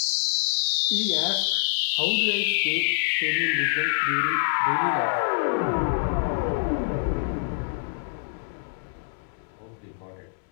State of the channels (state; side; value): silent; right; digital silence